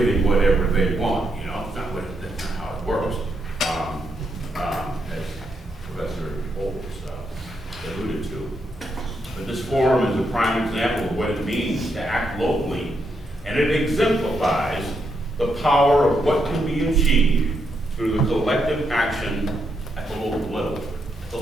whatever they want. That's not how it works. As Professor Bolts alluded to. But this forum is a prime example of what it means to act locally, and it exemplifies the power of what can be achieved through the collective action at the local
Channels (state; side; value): normal; both; correlation 0.80